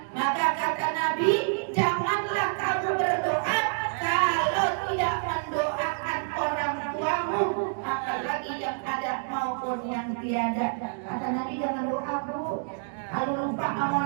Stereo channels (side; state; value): left; silent; digital silence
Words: Maka kata Nabi, janganlah kamu berdoa kalau tidak mendoakan orang tuamu, apalagi yang ada maupun yang tiada. Kata Nabi, jangan doa bu, kalau lupa sama